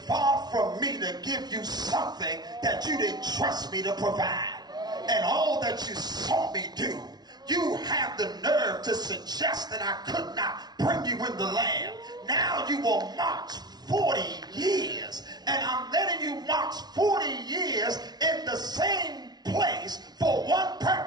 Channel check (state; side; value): late; left; 0.19 ms